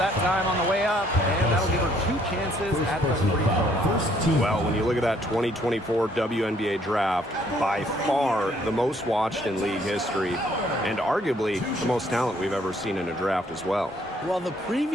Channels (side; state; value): both; normal; correlation 0.65